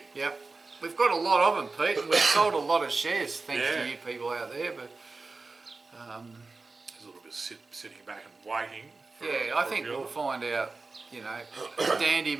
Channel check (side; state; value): left; quieter; 3.8 dB